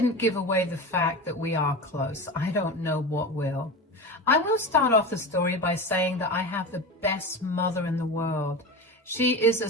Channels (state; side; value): normal; both; correlation 0.27